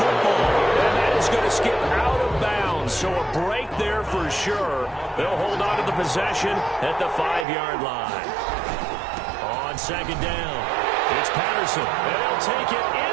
football. And that is going to skip out of bounds, so a break there for sure. They'll hold on to the possession at the 5-yard line. On second down, it's Patterson. And they'll take it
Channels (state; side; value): drops out; left; at 7.5 s